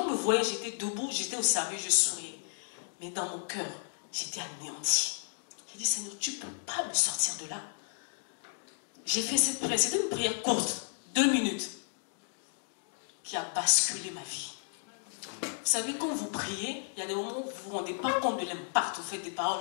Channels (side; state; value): right; silent; digital silence